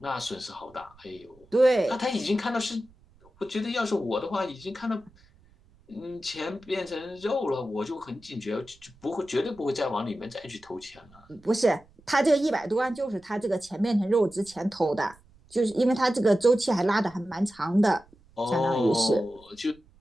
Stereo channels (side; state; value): right; noise; rumble, 28 dB below the sound